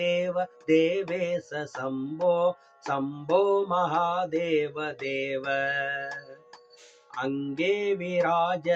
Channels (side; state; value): both; identical; correlation 1.00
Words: देवेश शम्भो शम्भो महादेव देव अंगे